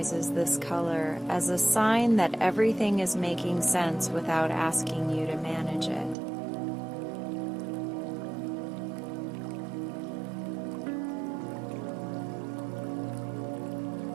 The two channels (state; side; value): drops out; left; at 6.2 s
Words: this color as a sign that everything is making sense without asking you to manage it.